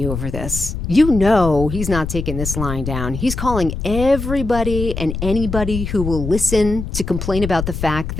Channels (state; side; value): noise; left; rumble, 6 dB below the sound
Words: over this? You know he's not taking this lying down. He's calling everybody and anybody who will listen to complain about the fact